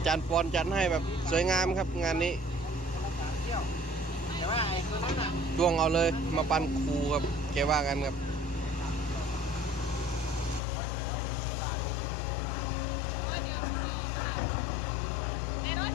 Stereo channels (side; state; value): right; drops out; at 10.6 s